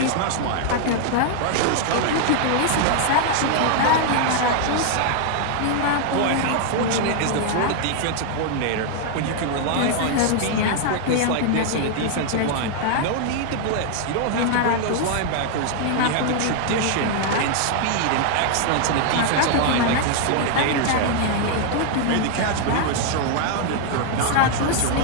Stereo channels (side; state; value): both; different; correlation 0.00